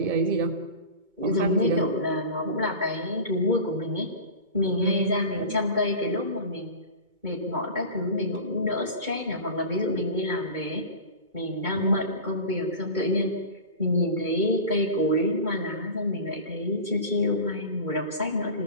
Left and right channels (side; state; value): left; late; 2.2 ms